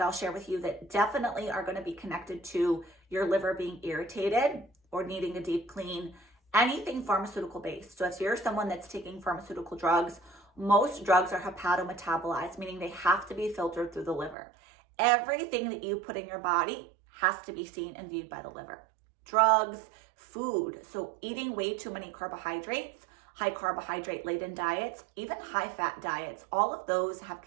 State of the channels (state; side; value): drops out; left; at 14.4 s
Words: I'll share with you that definitely are going to be connected to your liver being irritated or needing a deep clean, anything pharmaceutical based. So if you're someone that's taking pharmaceutical drugs, most drugs are hepatometabolites, meaning they have to be filtered through the liver. Everything that you put in your body has to be seen and viewed by the liver. Drugs, food, so eating way too many carbohydrates, high carbohydrate laden diets, even high fat diets, all of those have